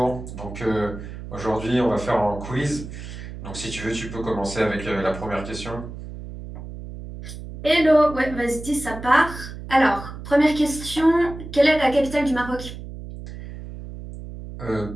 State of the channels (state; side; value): noise; right; hum, 11 dB below the sound